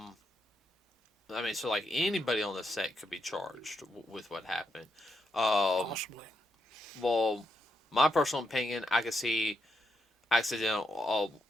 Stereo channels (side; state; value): both; normal; correlation 0.82